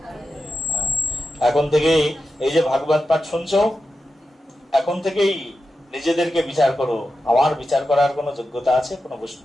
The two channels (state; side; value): normal; both; correlation 0.91